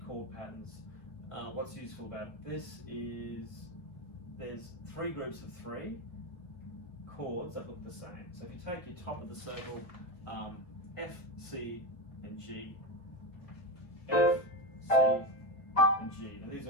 chord patterns. What's useful about this is there's 3 groups of 3 chords that look the same. So if you take your top of the circle, F, C, and G, F, C, and G, and these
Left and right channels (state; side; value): late; right; 2.1 ms